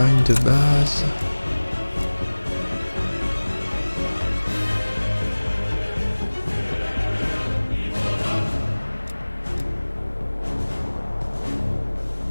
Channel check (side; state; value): both; inverted; correlation -1.00